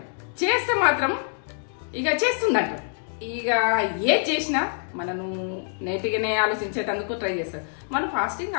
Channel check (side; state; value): right; silent; 61 dB below the other